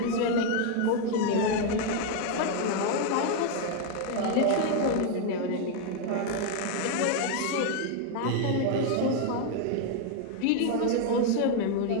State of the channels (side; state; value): both; different; correlation 0.01